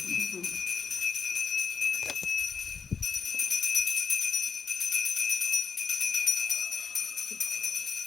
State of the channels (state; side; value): quieter; right; 5.8 dB